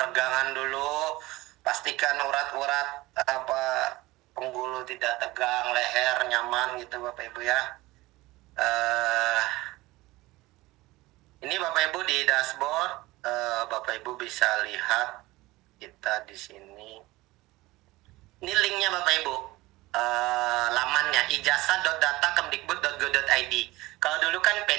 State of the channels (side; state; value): left; quieter; 19.8 dB